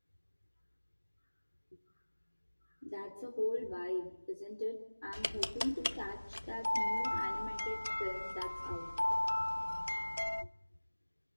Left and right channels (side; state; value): both; inverted; correlation -1.00